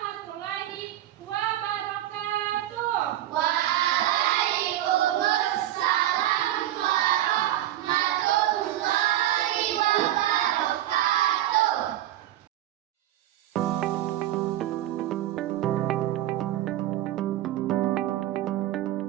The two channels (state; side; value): quieter; left; 13.5 dB